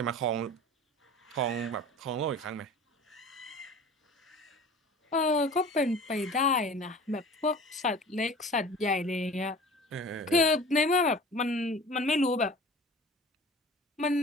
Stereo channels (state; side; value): normal; both; correlation 0.41